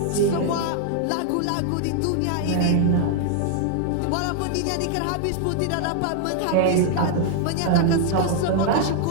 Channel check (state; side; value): different; both; correlation 0.00